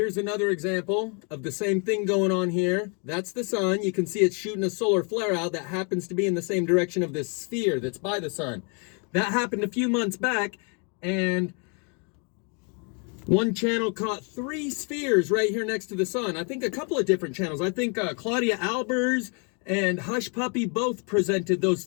another example of the same thing going on here. That's the sun. You can see it's shooting a solar flare out that happens to be in the same direction of this sphere that's by the sun. That happened a few months back, and one channel caught 3 spheres right here next to the sun. I think a couple of different channels. I think Claudia Albers and Hush Puppy both presented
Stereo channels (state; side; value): quieter; right; 36.5 dB